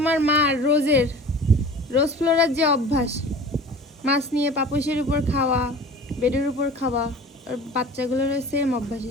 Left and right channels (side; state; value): both; normal; correlation 0.41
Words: মা রোজ ফ্লোরার যে অভ্যাস, মাছ নিয়ে পাপোশের উপর খাওয়া, বেডের উপর খাওয়া, আর বাচ্চাগুলোর সেম অভ্যাস